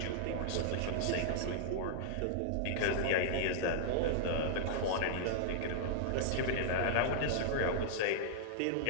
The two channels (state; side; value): different; both; correlation -0.01